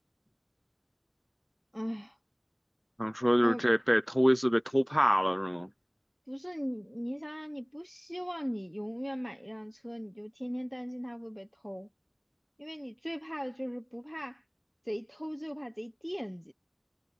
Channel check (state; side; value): identical; both; correlation 1.00